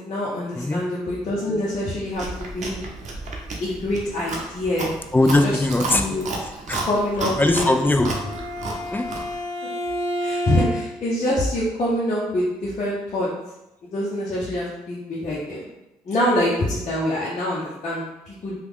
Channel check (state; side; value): normal; both; correlation 0.71